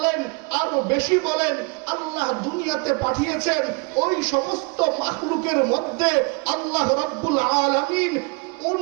আরো বেশি বলেন, আল্লাহ দুনিয়াতে পাঠিয়েছেন। ওই সমস্ত মাখলুকের মধ্যে আল্লাহ রাব্বুল আলামিন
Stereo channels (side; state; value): left; quieter; 31.1 dB